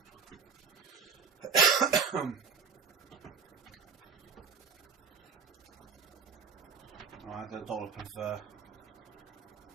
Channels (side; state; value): left; quieter; 5.8 dB